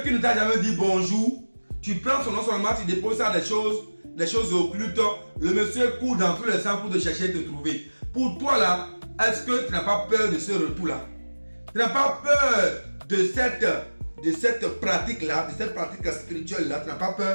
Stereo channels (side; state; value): both; inverted; correlation -1.00